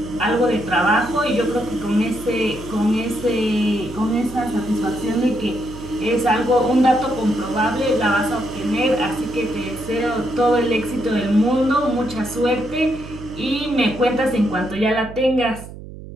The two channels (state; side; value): noise; right; hum, 14 dB below the sound